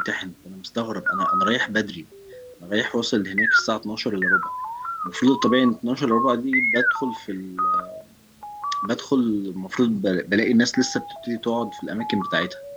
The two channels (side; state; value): both; identical; correlation 1.00